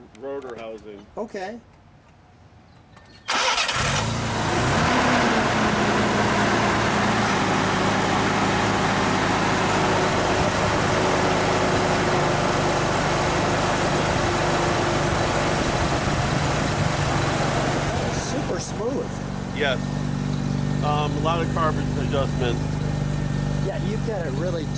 housing. Okay. Super smooth. Yes. A lot of carbon adjustments. Yeah, you've got it really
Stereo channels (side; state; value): both; identical; correlation 1.00